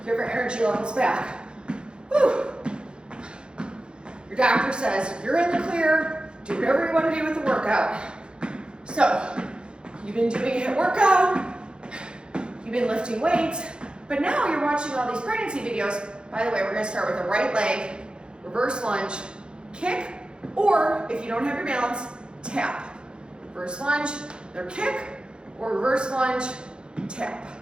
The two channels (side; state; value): left; late; 0.051 ms